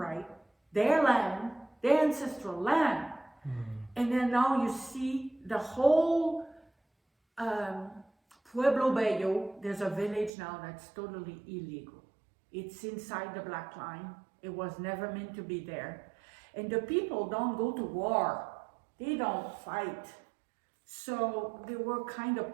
their land, their ancestral land. And then now you see the whole Pueblo Bello, there's a village now that's totally illegal. It's inside the black line. It was never meant to be there. And the people don't go to war. They don't fight. So they were kind of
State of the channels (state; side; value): drops out; left; at 10.3 s